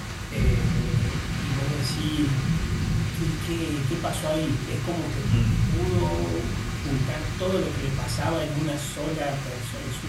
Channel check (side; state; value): both; identical; correlation 1.00